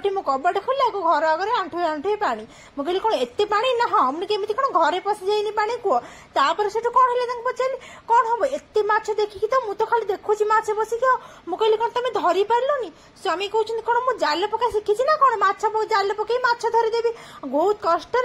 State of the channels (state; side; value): identical; both; correlation 1.00